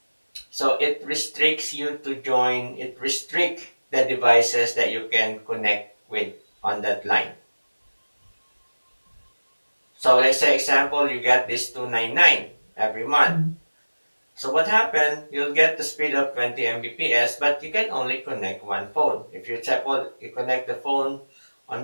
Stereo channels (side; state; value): both; inverted; correlation -1.00